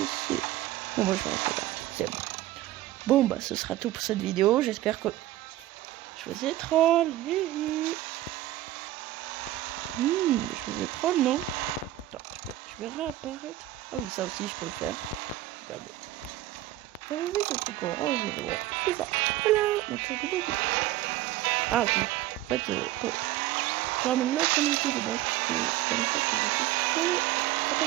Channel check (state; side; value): quieter; left; 15.0 dB